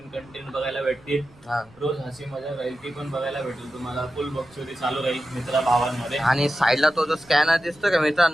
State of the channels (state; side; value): noise; right; rumble, 28 dB below the sound